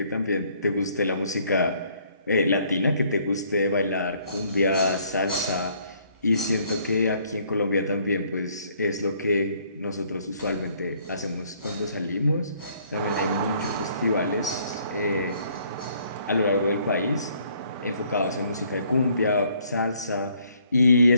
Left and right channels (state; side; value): inverted; both; correlation -0.64